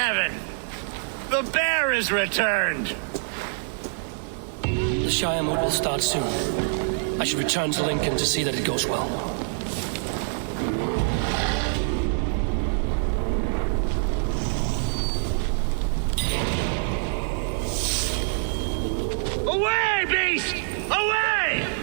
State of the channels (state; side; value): silent; left; digital silence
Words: The bear is returned! The Shire mood will start soon. I should return to Lincoln to see that it goes well. Away, beast! Away!